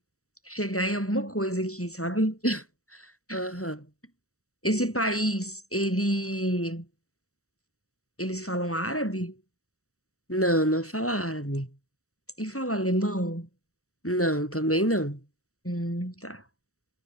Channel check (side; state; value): right; late; 0.65 ms